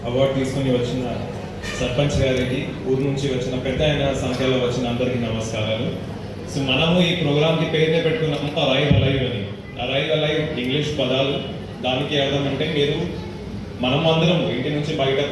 అవార్డు తీసుకొని వచ్చిన సర్పంచ్ గారికి, ఊరు నుంచి వచ్చిన పెద్ద అయిన సంఖ్యలో వచ్చిన అందరికీ నమస్కారాలు. సో మనము ఈ ప్రోగ్రామ్కి పేరునే పెట్టుకున్నాము అరైవ్ అలైవ్ అని. అరైవ్ అలైవ్ ఇంగ్లీష్ పదాలు, దానికి అర్థం అంటే మనం అందరం ఇంటి నుంచి బయట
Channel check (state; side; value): identical; both; correlation 1.00